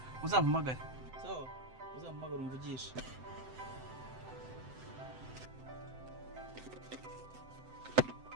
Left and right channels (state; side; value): late; left; 7.8 ms